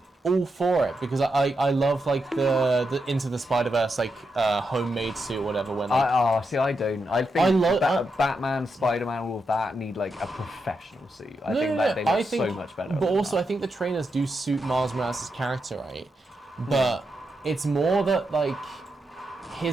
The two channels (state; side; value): normal; both; correlation 0.85